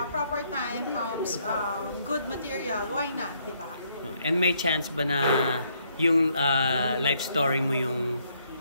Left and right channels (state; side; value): inverted; both; correlation -0.71